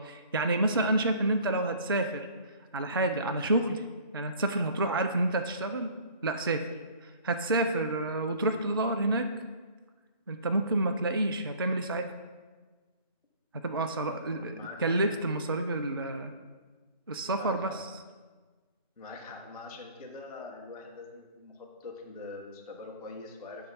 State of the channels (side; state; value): both; inverted; correlation -0.50